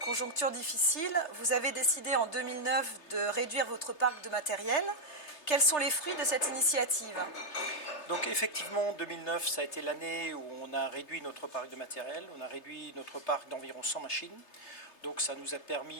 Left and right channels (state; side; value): late; right; 3.3 ms